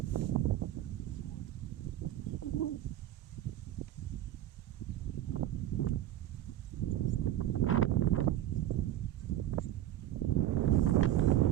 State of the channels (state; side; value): quieter; left; 12.8 dB